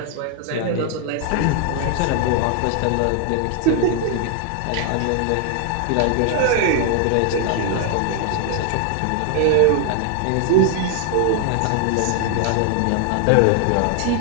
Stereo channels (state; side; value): different; both; correlation 0.00